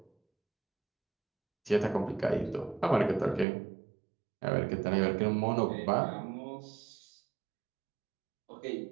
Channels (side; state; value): left; drops out; at 3.5 s